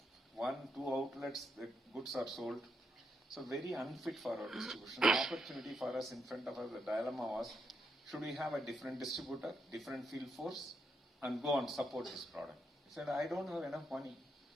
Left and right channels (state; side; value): normal; both; correlation 0.80